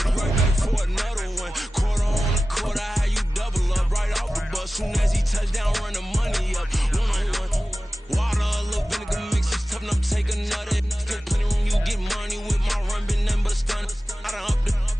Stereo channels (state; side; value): normal; both; correlation 0.96